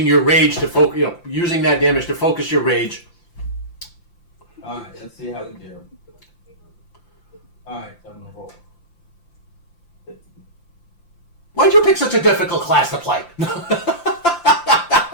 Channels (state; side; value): late; right; 5.8 ms